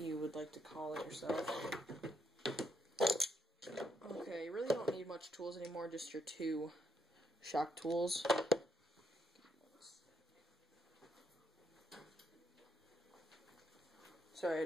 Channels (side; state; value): both; normal; correlation 0.75